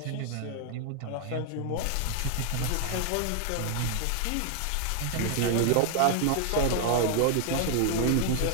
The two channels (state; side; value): different; both; correlation 0.00